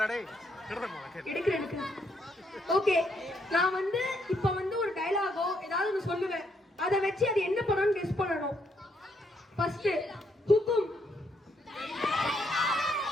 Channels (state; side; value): normal; both; correlation 0.73